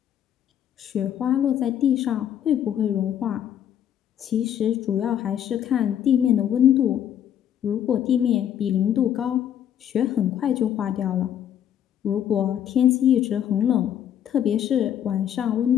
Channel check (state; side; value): quieter; right; 9.9 dB